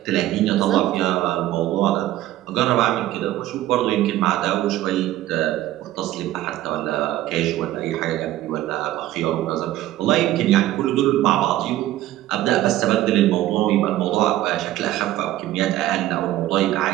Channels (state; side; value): quieter; left; 14.5 dB